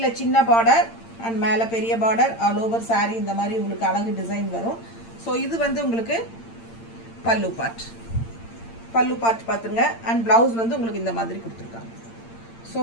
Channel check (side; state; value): right; late; 8.8 ms